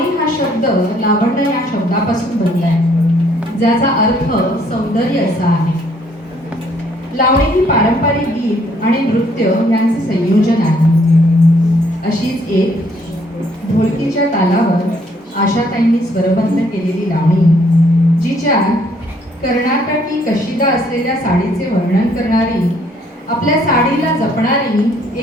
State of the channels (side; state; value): both; normal; correlation 0.65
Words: हा शब्द लावण्य या शब्दापासून बनलाय, ज्याचा अर्थ सौंदर्य असा आहे. लावणी ही पारंपरिक गीत आणि नृत्य यांचे संयोजन आहे. अशीच एक ढोलकीच्या तालावर आशाताईंनी स्वरबद्ध केलेली लावणी, जिच्या कर्नाटकी कशिदा असलेल्या साडीचे वर्णन करणारी, आपल्या साडीला जपणारी